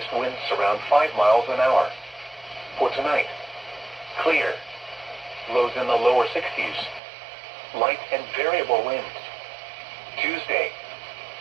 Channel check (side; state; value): left; drops out; at 7.0 s